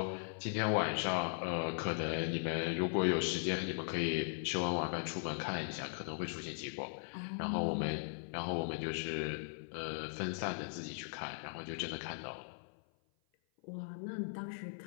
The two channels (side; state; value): right; silent; 52 dB below the other